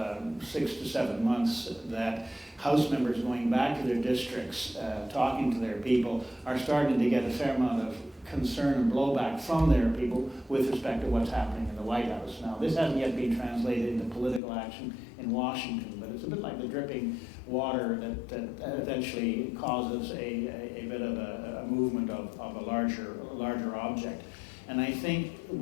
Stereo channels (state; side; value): drops out; right; at 14.4 s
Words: 6 to 7 months that House members going back to their districts, talking to their people, are starting to get a fair amount of concern and blowback from their people with respect to what's happening in the White House. Now, this hasn't yet been translated into political action in Washington, but it's a bit like the dripping water that eventually causes a bit of a movement of a larger object. And I think